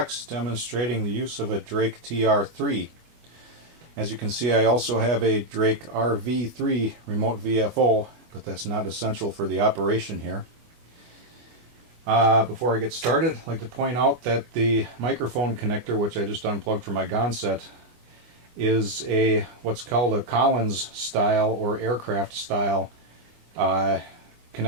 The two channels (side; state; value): left; late; 24 ms